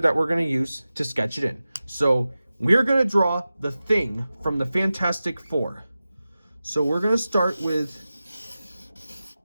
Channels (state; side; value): inverted; both; correlation -0.95